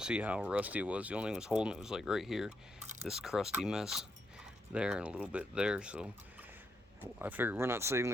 see how rusty it was. The only thing that was holding it was like right here, this crusty mess there and a little bit there. So I figured we're not saving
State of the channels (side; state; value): both; normal; correlation 0.79